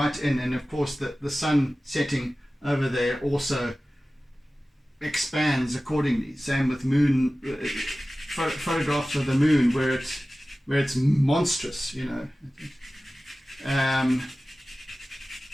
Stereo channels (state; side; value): normal; both; correlation 0.96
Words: in, and of course the sun setting over there also expands accordingly. Same with moon photographs of the moon, where it's monstrous,